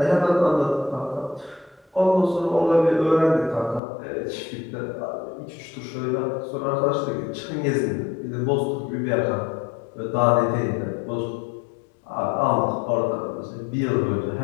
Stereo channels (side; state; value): right; drops out; at 3.8 s